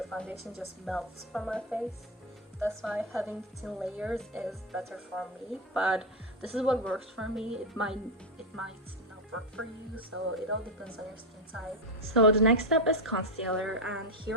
foundation just melts from my face. That's why having thin layers is better for me, but this is what works for me. It might not work for you, so it all depends on your skin type. So the next step is concealer, and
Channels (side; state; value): both; normal; correlation 0.07